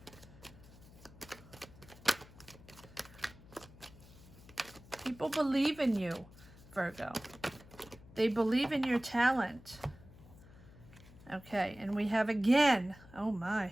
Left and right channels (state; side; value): noise; left; hum, 21 dB below the sound